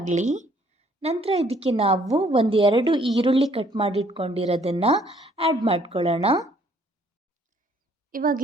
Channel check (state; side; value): normal; both; correlation 0.63